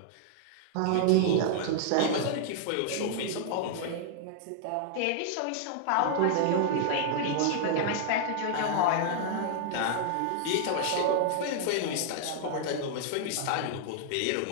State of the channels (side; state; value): both; different; correlation -0.01